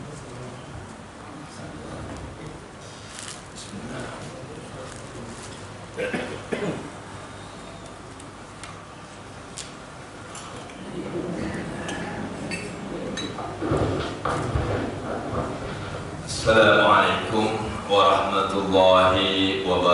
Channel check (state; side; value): identical; both; correlation 1.00